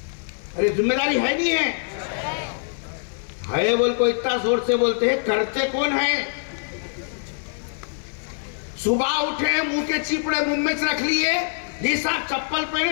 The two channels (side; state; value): right; silent; digital silence